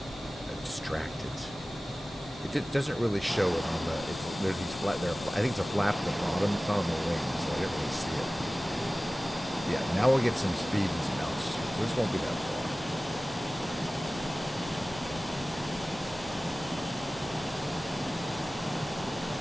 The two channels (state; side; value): normal; both; correlation 0.97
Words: distracted. It doesn't really show it on the. There's these flat there. I think it's a flap at the bottom. It's not on the wing, so I didn't really see it. Yeah, now we'll get some speed and some altitude. So this won't be that far.